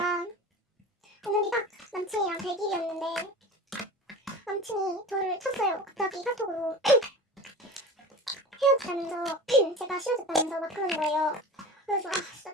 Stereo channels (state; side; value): normal; both; correlation 0.34